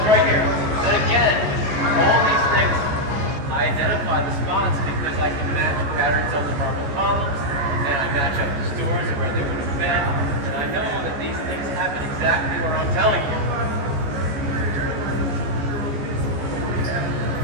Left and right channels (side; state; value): left; late; 14 ms